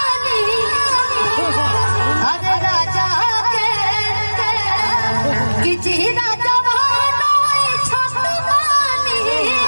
अरे राजा के कि जीदा छत बानी,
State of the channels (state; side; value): inverted; both; correlation -1.00